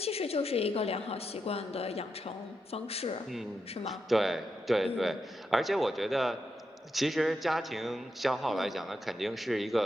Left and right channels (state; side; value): normal; both; correlation 0.85